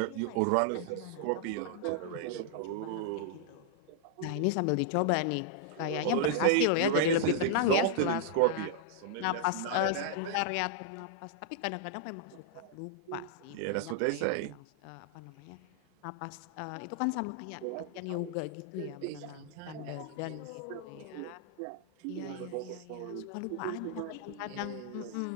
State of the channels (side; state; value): both; different; correlation -0.01